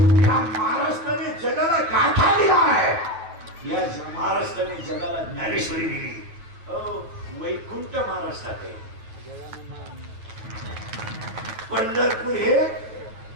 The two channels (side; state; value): left; late; 9.0 ms